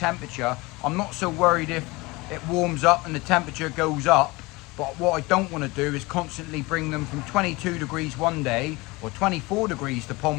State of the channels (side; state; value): right; quieter; 23.3 dB